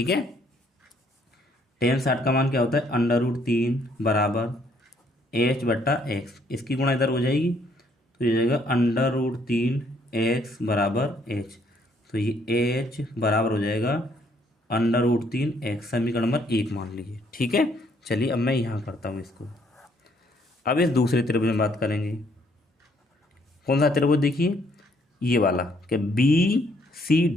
है, टेन 60 का मान क्या होता है √3 बराबर एच बट्टा एक्स। इसकी गुणा इधर हो जाएगी तो ये जाएगा √3 एक्स बराबर एच। तो ये एच बराबर हो जाएगा √3 एक्स, समीकरण नंबर 1 मान लीजिए। ठीक है, चलिए अब मैं यहाँ करता हूँ इसको। अब इस दूसरे त्रिभुज में बात करेंगे। कौन सा त्रिभुज, देखिए ये वाला, क्या बी सी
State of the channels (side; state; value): both; normal; correlation 0.67